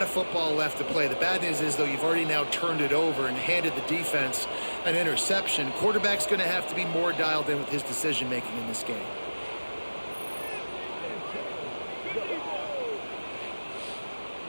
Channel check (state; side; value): inverted; both; correlation -1.00